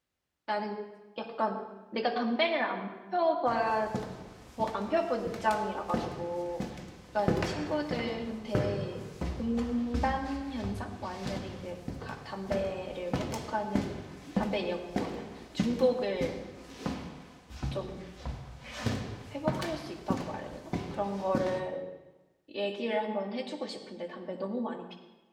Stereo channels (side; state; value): both; identical; correlation 1.00